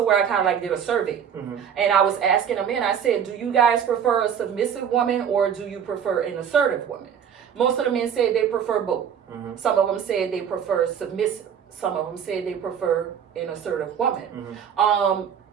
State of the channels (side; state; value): left; quieter; 8.1 dB